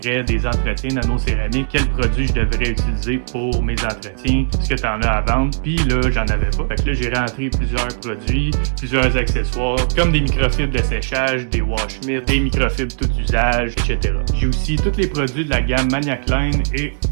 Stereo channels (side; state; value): left; silent; 67 dB below the other